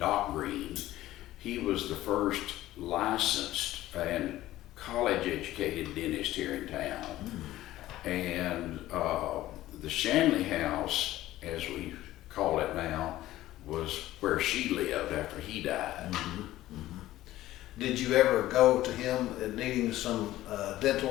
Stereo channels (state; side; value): quieter; right; 15.3 dB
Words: Green. He was the first licensed and college-educated dentist here in town. And the Shanley house, as we call it now, was where she lived after he died. Did you ever go to him needing some